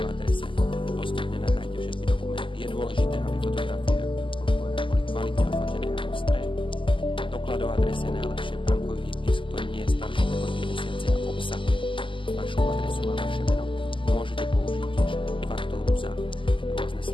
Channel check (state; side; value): late; right; 0.25 ms